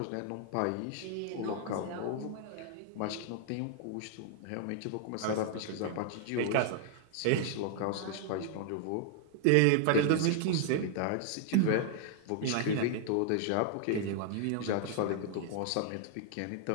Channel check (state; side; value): different; both; correlation 0.00